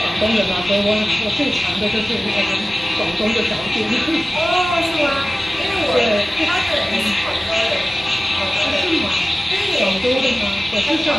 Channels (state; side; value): normal; both; correlation 0.96